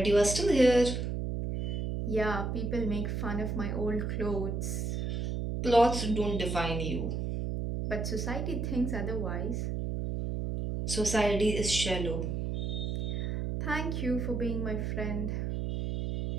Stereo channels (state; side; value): noise; right; hum, 2 dB below the sound